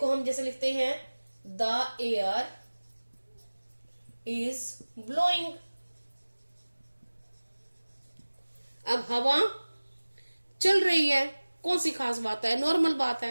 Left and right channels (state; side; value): inverted; both; correlation -1.00